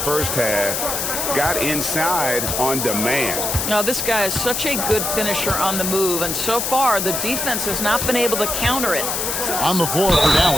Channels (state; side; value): noise; left; hiss, 1 dB below the sound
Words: first half. Got inside on demand. Now, this guy is such a good finisher on the move, and so far the defense has not been able to counter it. On the floor for